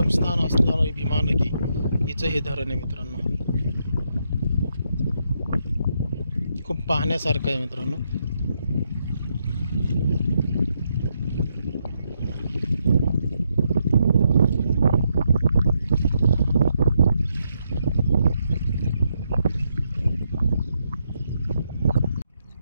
असणारी भीमा नदी हिचं हे धरण आहे मित्रांनो। खूप पाहण्यासारखं आहे मित्रांनो।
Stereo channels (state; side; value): inverted; both; correlation -0.79